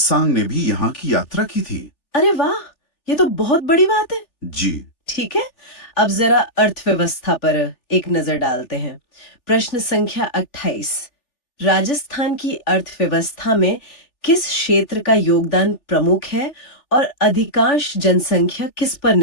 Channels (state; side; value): late; right; 3.4 ms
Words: ने भी यहाँ की यात्रा की थी। अरे वाह, ये तो बहुत बड़ी बात है। जी। ठीक है, अब जरा अर्थव्यवस्था पर एक नजर डालते हैं। प्रश्न संख्या 28। राजस्थान की अर्थव्यवस्था में किस क्षेत्र का योगदान प्रमुख है और अधिकांश जनसंख्या किस पर